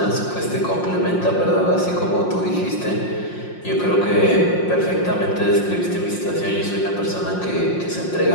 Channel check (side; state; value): right; late; 5.6 ms